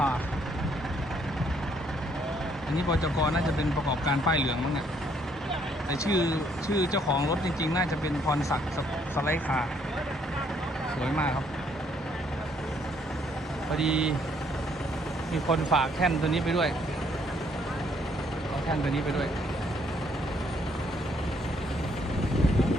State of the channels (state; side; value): normal; both; correlation 0.67